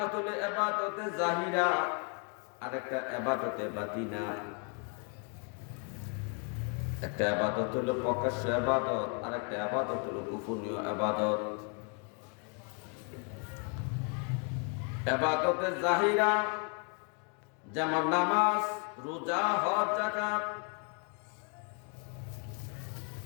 হলো ইবাদতে জাহিরা, আর একটা ইবাদতে বাতিনা। একটা ইবাদত হলো প্রকাশ্য ইবাদত, আর একটা ইবাদত হলো গোপনীয় ইবাদত। ইবাদতে জাহিরা যেমন নামাজ, রোজা, হজ, যাকাত,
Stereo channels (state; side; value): quieter; right; 37.7 dB